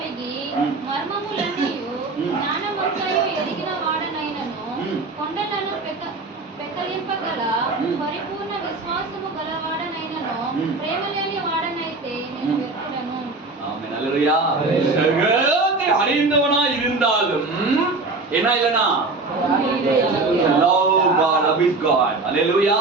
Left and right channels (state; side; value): quieter; left; 3.5 dB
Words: మర్మములన్నీయు జ్ఞానమంతయు ఎరిగిన వాడనైనను కొండలను పెకలింపగల పరిపూర్ణ విశ్వాసము గలవాడనైనను ప్రేమ లేని వాడనైతే నేను వ్యర్థుడను. ஆமென். அல்லேலூயா. சகலத்தை அறிந்தவனாய் இருந்தாலும் என்ன இல்லனா? love God, love is God.